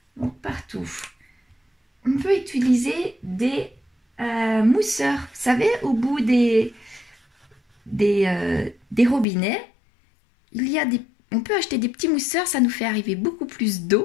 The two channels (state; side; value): drops out; right; at 9.2 s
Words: Donc, partout. On peut utiliser des mousseurs, vous savez, au bout des robinets, on peut acheter des petits mousseurs, ça nous fait arriver beaucoup plus